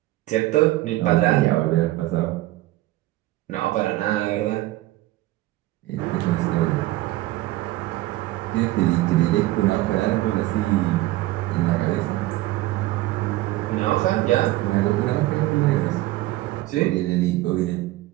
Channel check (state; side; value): quieter; left; 17.1 dB